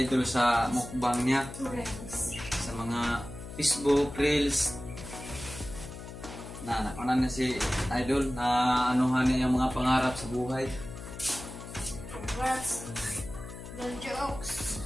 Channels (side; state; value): left; noise; hum, 12 dB below the sound